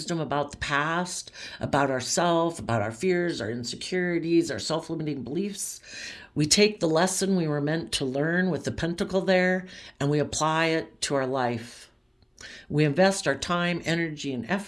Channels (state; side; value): identical; both; correlation 1.00